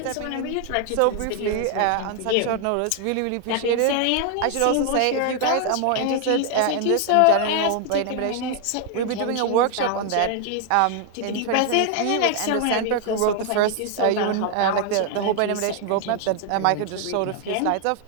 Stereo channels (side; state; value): both; different; correlation 0.00